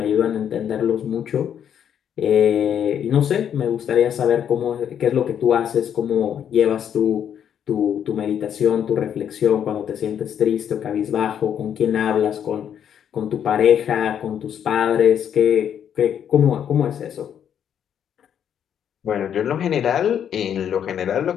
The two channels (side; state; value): right; quieter; 9.0 dB